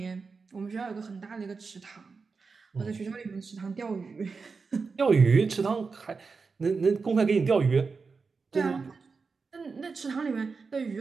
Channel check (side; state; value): left; quieter; 4.7 dB